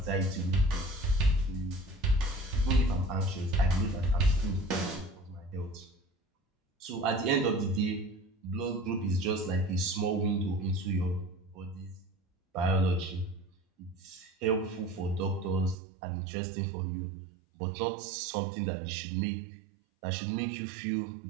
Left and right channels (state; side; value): drops out; left; at 15.8 s